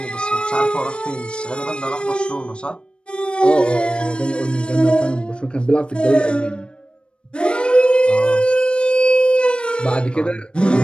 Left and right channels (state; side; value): late; right; 0.055 ms